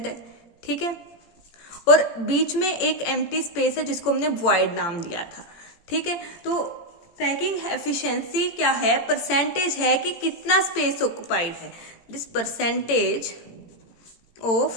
है। ठीक है, और बीच में एक एम्प्टी स्पेस है जिसको हमने वॉइड नाम दिया था। ठीक है, तो पैकिंग एफिशिएंसी क्या है, परसेंटेज है कि कितना स्पेस ऑक्युपाइड है। This percentage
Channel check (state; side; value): late; right; 17 ms